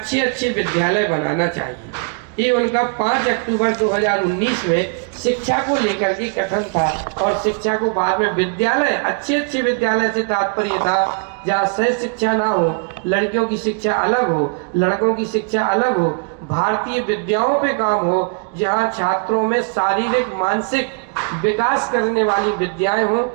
विद्यालय बनाना चाहिए। ये उनका 5 अक्टूबर 2019 में शिक्षा को लेकर के कथन था। और शिक्षा को बाद में विद्यालय, अच्छे विद्यालय से तात्पर्य था जहाँ सह शिक्षा ना हो, लड़कियों की शिक्षा अलग हो, लड़कों की शिक्षा अलग हो, भारतीय विद्याओं पे काम हो, जहाँ छात्रों में शारीरिक मानसिक विकास करने वाली विद्याएं हों,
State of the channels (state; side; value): quieter; left; 38.5 dB